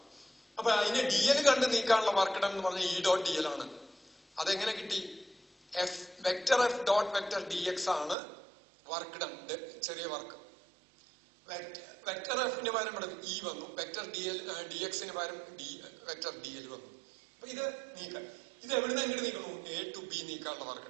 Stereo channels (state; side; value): drops out; left; at 8.2 s